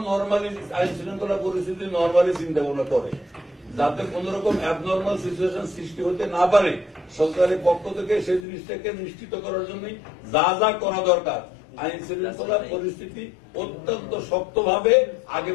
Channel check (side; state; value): right; drops out; at 8.5 s